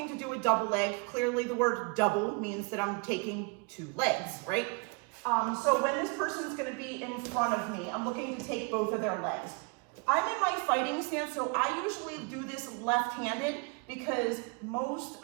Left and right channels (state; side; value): quieter; left; 32.9 dB